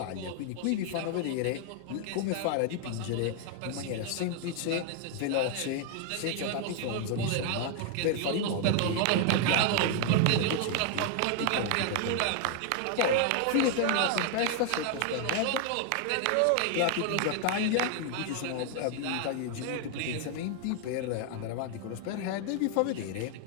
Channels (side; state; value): both; different; correlation 0.00